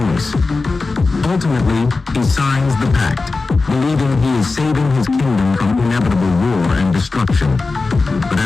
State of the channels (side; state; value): right; quieter; 3.8 dB